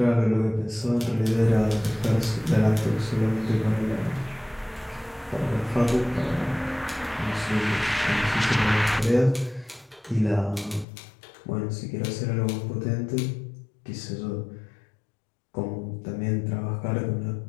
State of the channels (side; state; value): right; drops out; at 10.9 s